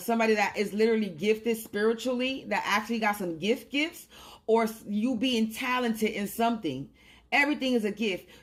that is literally gifted spiritually, that actually got some gifts, or you being talented in something. Everything is a gift.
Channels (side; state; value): both; identical; correlation 1.00